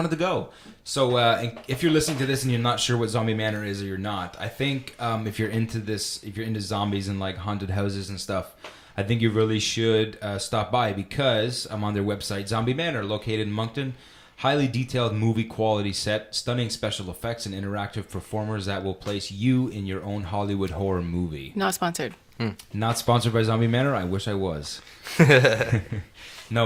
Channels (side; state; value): both; identical; correlation 1.00